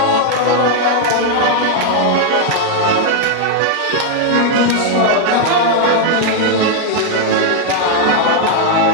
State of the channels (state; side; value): different; both; correlation 0.00